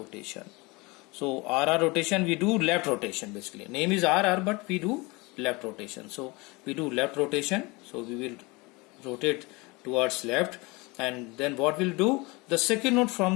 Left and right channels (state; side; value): quieter; right; 25.1 dB